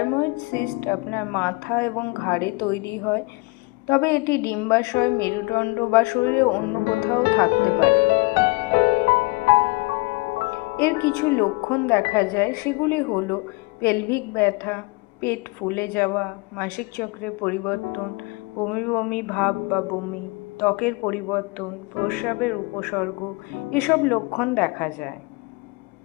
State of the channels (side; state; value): right; quieter; 26.1 dB